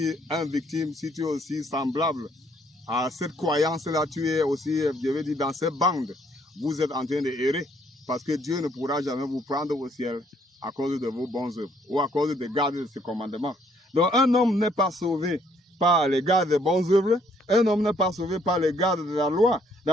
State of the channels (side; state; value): both; normal; correlation 0.66